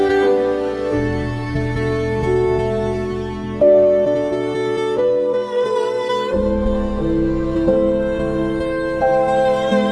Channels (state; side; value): identical; both; correlation 1.00